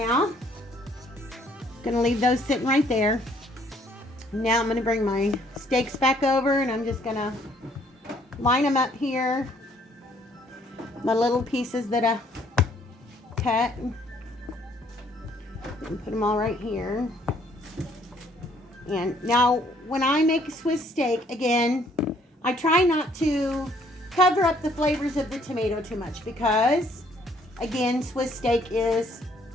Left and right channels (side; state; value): both; normal; correlation 0.64